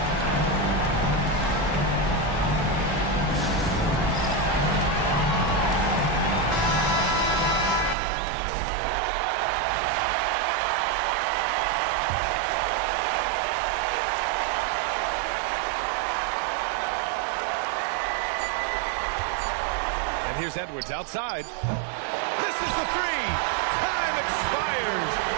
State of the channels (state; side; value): drops out; left; at 8.0 s